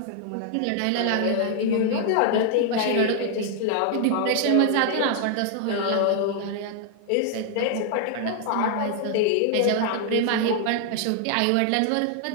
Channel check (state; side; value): different; both; correlation 0.00